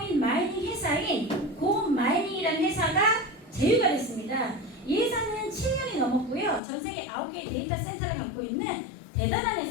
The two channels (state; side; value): drops out; right; at 6.6 s